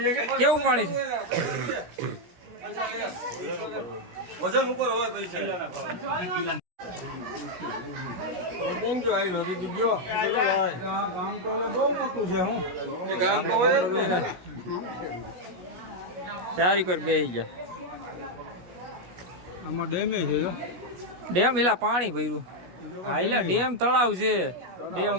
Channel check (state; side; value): late; left; 17 ms